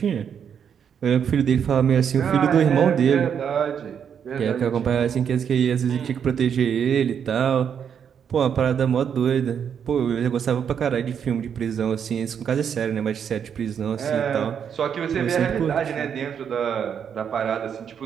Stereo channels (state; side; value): quieter; left; 7.8 dB